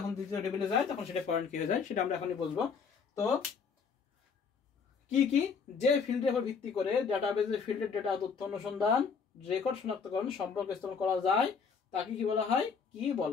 দ্বিতীয় টেবিলে যায় তখন সেটা ফরেন কি হয়ে যায়, সেটা আমরা এখনই বলবো। তো কি যে ফিল্ডের উপর ভিত্তি করে ডাটাবেজের ফিল্ডের ডেটা তথ্য অনুসন্ধান রেকর্ড শনাক্তকরণ সম্পর্ক স্থাপন করা যায় তাকে কি বলা হয়, কি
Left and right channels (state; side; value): quieter; right; 5.8 dB